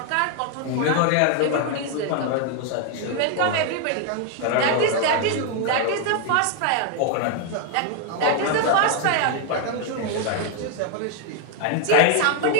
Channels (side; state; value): both; different; correlation 0.00